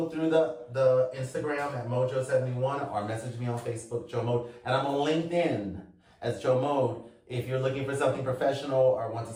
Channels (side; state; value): both; identical; correlation 1.00